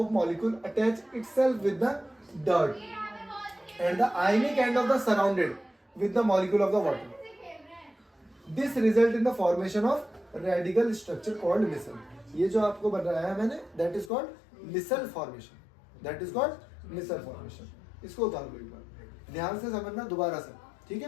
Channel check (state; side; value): drops out; right; at 14.1 s